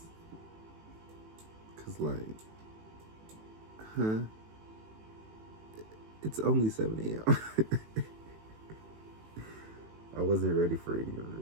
Cause it's only 7 a.m. I wasn't ready for any of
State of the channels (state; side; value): late; left; 18 ms